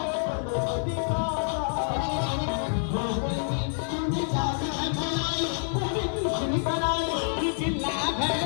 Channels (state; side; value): silent; right; digital silence